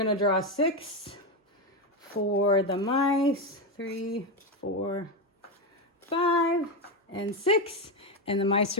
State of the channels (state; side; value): normal; both; correlation 0.11